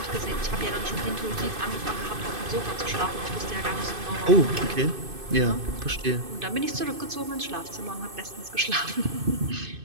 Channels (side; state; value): left; late; 2.5 ms